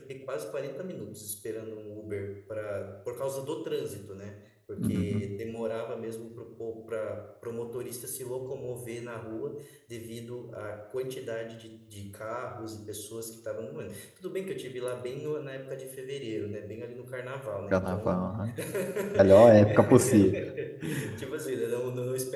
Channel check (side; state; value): both; identical; correlation 1.00